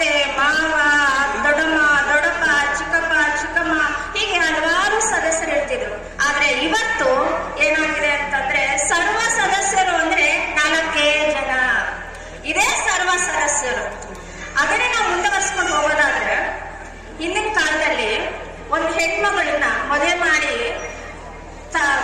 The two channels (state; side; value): identical; both; correlation 1.00